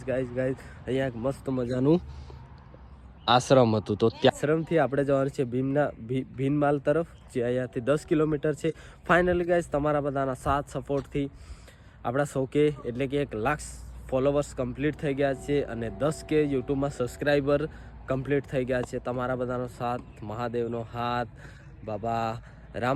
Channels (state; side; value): identical; both; correlation 1.00